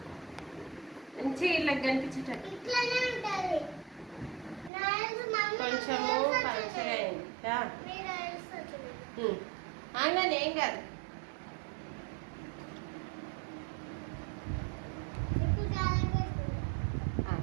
మంచిగా ఇలా కనిపించేటట్టు కొంచెము పలచగా అయింది ఆగానే ఏం కాదు.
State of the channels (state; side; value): drops out; left; at 4.7 s